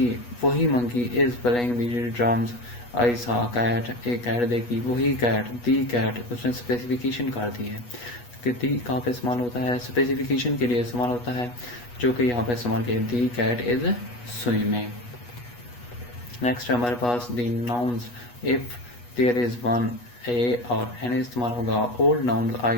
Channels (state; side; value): late; right; 8.3 ms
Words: वही monkey is playing the drums. I saw a cat. एक कैट देखी वही कैट. The cat उसने स्पेसिफिकेशन कर दी है कि दी कहाँ पे इस्तेमाल होता है. स्पेसिफिकेशन के लिए इस्तेमाल होता है जो कि यहाँ पे इस्तेमाल किया. The cat is swimming. Next है हमारे पास the nouns. If there is one A और एन इस्तेमाल होगा. Old nouns